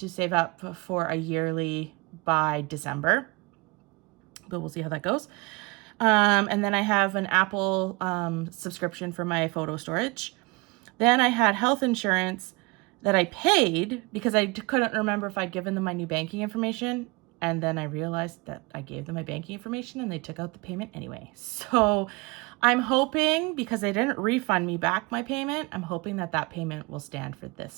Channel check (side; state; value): left; quieter; 26.0 dB